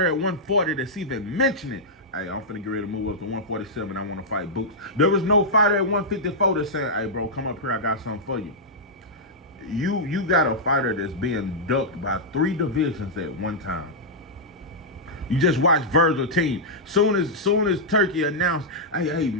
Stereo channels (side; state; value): both; normal; correlation -0.09